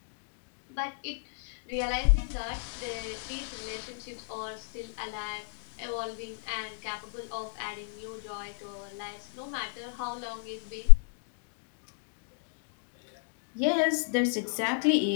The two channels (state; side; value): silent; right; digital silence